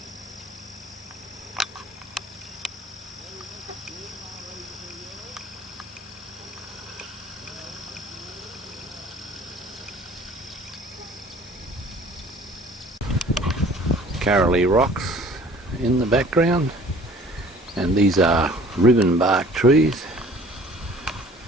Carolee rocks in the background, and these are ribbon bark trees,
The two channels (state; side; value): normal; both; correlation 0.51